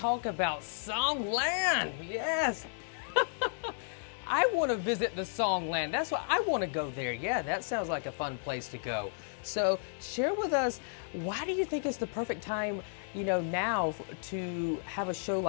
about Songland. Yes. All right. I want to visit the Songland. That's why I want to go there. Yeah, that sounds like a fun place to go. So share with us, why do you think it's the perfect time, now to have a show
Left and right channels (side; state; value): right; silent; digital silence